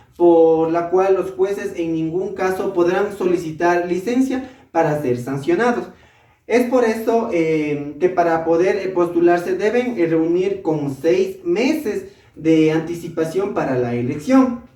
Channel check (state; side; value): identical; both; correlation 1.00